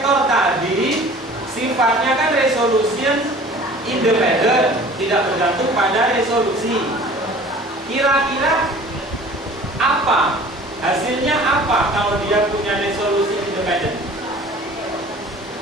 tadi sifatnya kan resolution independent, tidak bergantung pada resolusi. Kira-kira apa? Hasilnya apa kalau dia punya resolusi independent?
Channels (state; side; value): normal; both; correlation 0.46